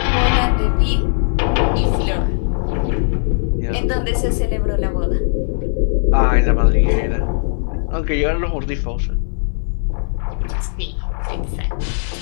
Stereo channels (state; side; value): silent; right; 67 dB below the other